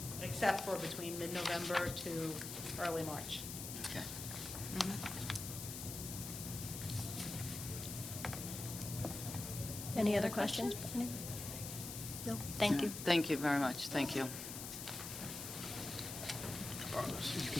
except for between mid-November to early March. Okay. Any other questions? No? Thank you. Thank you very much, thank you.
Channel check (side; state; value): left; noise; hiss, 7 dB below the sound